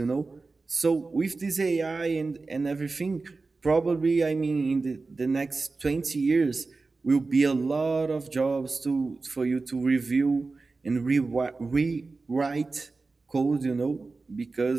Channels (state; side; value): quieter; left; 3.8 dB